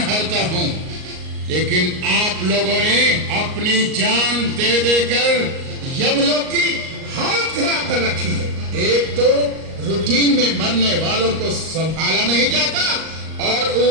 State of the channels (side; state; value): left; late; 38 ms